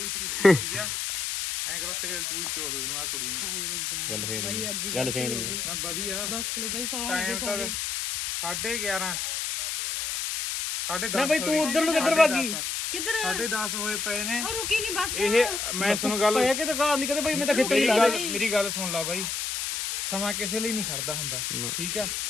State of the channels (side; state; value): left; noise; hiss, 2 dB below the sound